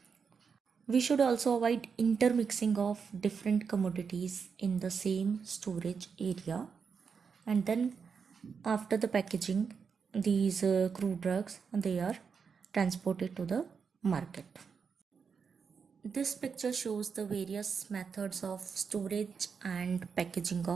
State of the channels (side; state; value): left; quieter; 6.0 dB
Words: We should also avoid intermixing of different commodities in the same storage area. And then after the packaging, these crude drugs they are transported to the market. This picture shows the various methods of storage and packaging